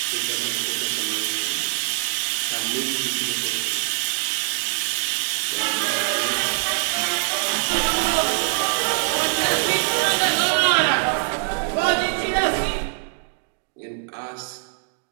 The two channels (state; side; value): silent; left; digital silence